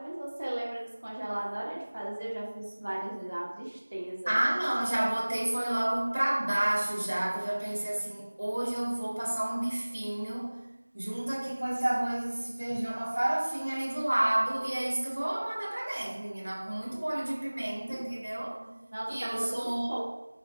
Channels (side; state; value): both; inverted; correlation -1.00